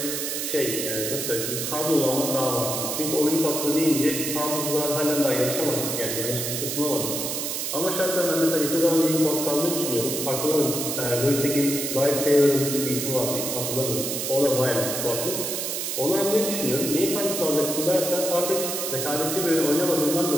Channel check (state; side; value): noise; right; hiss, 2 dB below the sound